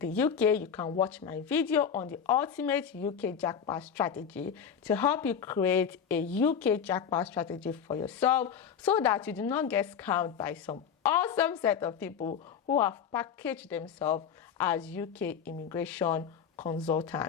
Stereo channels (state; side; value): quieter; right; 7.6 dB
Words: UK, you can watch my video on the ultimate UK jackpot strategy to help you create a UK jackpot strategy for yourself so that you do not get scammed by some awesome set of people who have packaged themselves as UK immigration